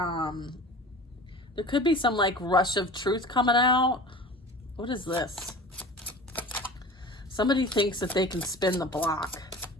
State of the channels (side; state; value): both; normal; correlation 0.38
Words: could be some like rush of truth coming out. What is this? Somebody thinks that they can spin the block